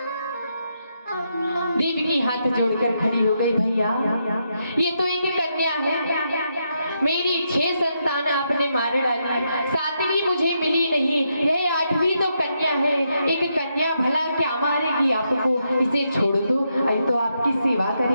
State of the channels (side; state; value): both; inverted; correlation -0.81